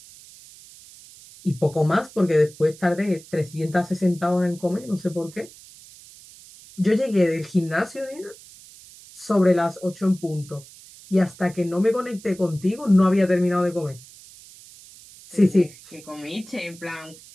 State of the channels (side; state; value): right; noise; hiss, 21 dB below the sound